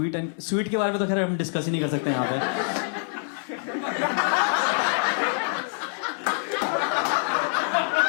के बारे में तो खैर हम डिस्कस ही नहीं कर सकते यहाँ पे।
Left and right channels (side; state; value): right; silent; 61 dB below the other